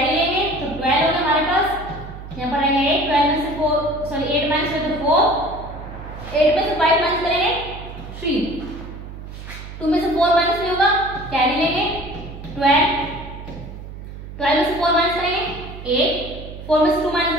लेंगे तो 12 होगा हमारे पास। यहाँ पर रहेगा 8 12 में से 4 सॉरी 8 माइनस हुए तो 4 8 में से 5 माइनस करेंगे 3 2 में से 4 माइनस नहीं होगा कैरी लेंगे 12 12 में से 4 माइनस करेंगे 8 4 में से 2 माइनस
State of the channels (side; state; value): right; noise; hum, 12 dB below the sound